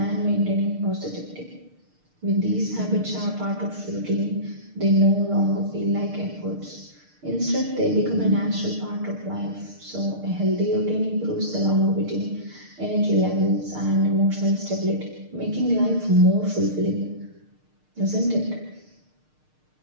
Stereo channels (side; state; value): left; late; 6.6 ms